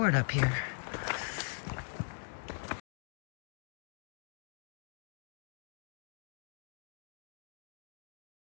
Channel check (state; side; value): silent; right; digital silence